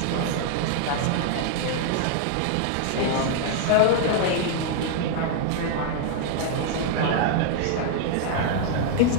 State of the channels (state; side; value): different; both; correlation 0.00